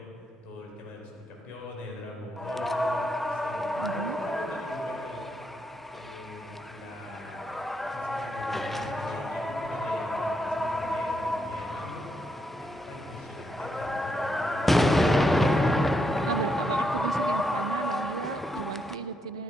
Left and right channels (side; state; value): both; normal; correlation 0.80